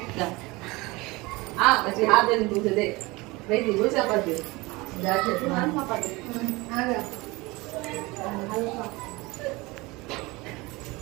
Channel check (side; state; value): left; quieter; 23.0 dB